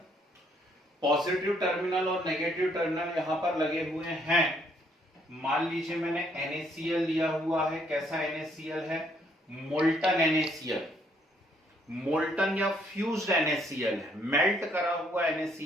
पॉजिटिव टर्मिनल और नेगेटिव टर्मिनल यहां पर लगे हुए हैं। मान लीजिए मैंने NaCl लिया हुआ है। कैसा NaCl है? मोल्टन NaCl, मोल्टन या फ्यूज्ड NaCl है, मेल्ट करा हुआ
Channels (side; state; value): both; normal; correlation 0.68